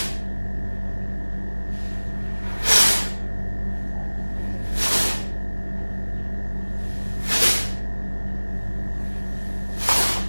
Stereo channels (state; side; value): inverted; both; correlation -1.00